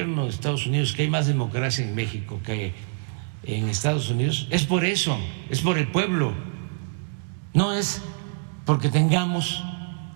de Estados Unidos que hay más democracia en México que en Estados Unidos, es por eso, es por el pueblo, no es porque tengamos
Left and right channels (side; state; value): left; silent; digital silence